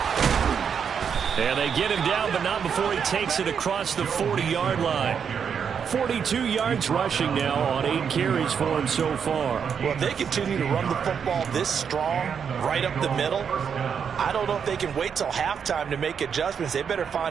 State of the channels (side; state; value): left; quieter; 7.1 dB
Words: And they get him down, but not before he takes it across the 40-yard line. 42 yards rushing now on 8 carries for him so far. Well, if they continue to run the football this strong, right up the middle, I don't know if they can wait till halftime to make adjustments. They better